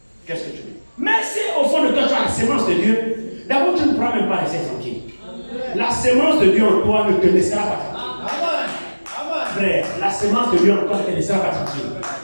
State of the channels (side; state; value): both; inverted; correlation -1.00